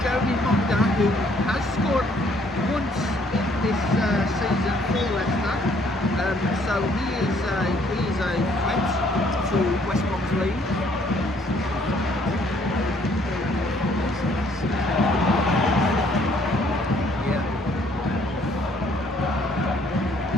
Jeremy Munger who has scored once in this season for Leicester. So he is a threat to West Brom's lead. Yeah.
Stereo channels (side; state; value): both; normal; correlation 0.64